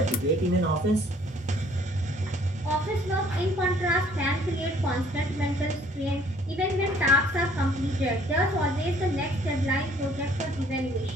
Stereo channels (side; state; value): both; normal; correlation 0.59